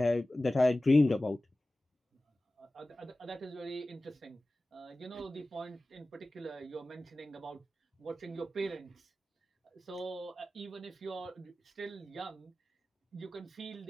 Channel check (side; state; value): both; normal; correlation 0.96